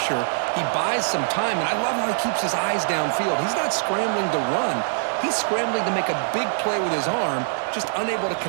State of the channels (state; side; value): silent; left; digital silence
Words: He buys some time, and I love how he keeps his eyes downfield. He's not scrambling to run. He's scrambling to make a big play with his arm, just unable to